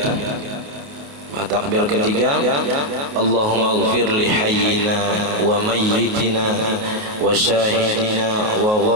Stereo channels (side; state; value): left; late; 28 ms